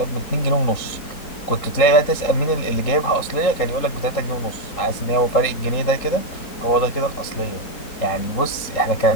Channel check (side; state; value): right; late; 3.8 ms